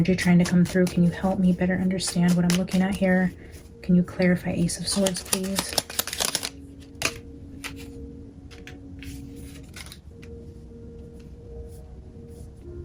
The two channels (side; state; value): both; identical; correlation 1.00